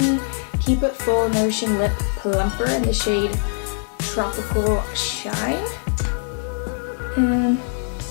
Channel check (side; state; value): right; silent; 58 dB below the other